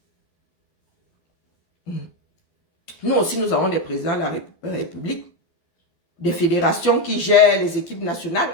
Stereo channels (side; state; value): right; late; 12 ms